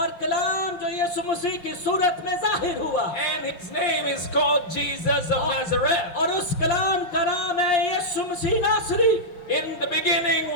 कलाम जो यीशु मसीह की सूरत में जाहिर हुआ, And his name is called Jesus of Nazareth. और उस कलाम का नाम है यीशु मसीह नासरी। In the beginning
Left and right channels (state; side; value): late; right; 5.7 ms